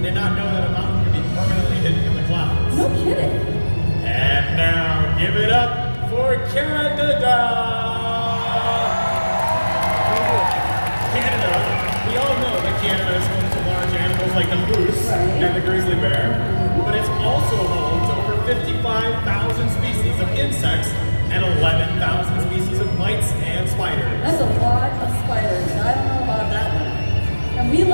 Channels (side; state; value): both; inverted; correlation -1.00